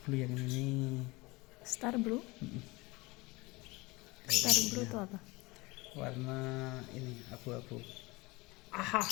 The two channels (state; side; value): quieter; right; 23.5 dB